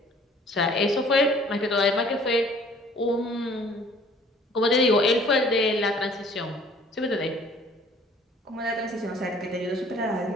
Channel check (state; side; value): normal; both; correlation 0.54